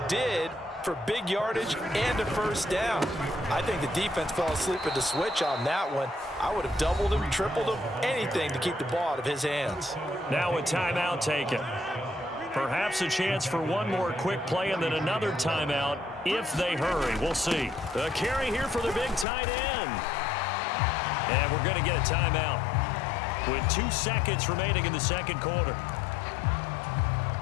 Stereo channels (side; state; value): right; drops out; at 19.2 s